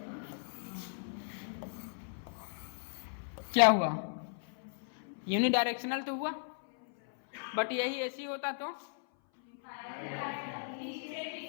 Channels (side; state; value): right; silent; 54 dB below the other